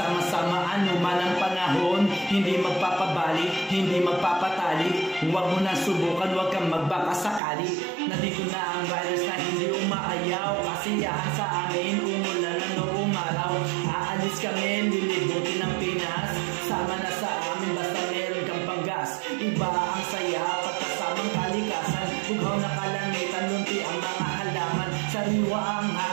anuman ang panahon. Hindi magpapabali, hindi magpapatali. Huwag mo na subukan, huwag kang magbakasakali. Nandito na ang riders na hindi umaayaw. Kasiyahan sa amin, umulan na noong araw. Aalis kami, lilibutin ng Pinas. Sama na sa amin, basta meron kang panggas. Iba ang saya, pagkasamang kalikasan. Bughaw na kalangitan, lunti ang mga halaman. Sariwa ang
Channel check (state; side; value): drops out; left; at 7.4 s